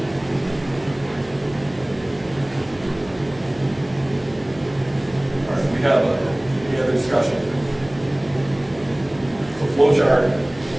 All right, we have any other discussion? So flow chart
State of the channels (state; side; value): noise; right; hum, 22 dB below the sound